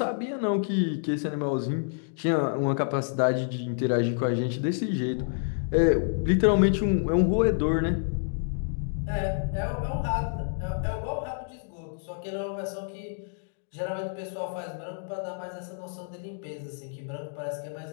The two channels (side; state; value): right; silent; digital silence